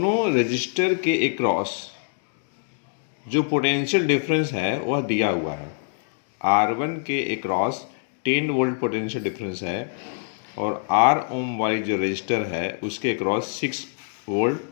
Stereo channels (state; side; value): silent; right; digital silence